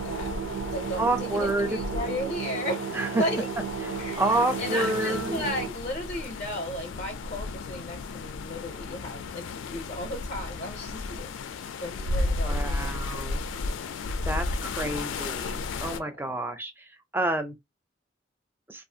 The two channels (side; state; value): both; normal; correlation 0.46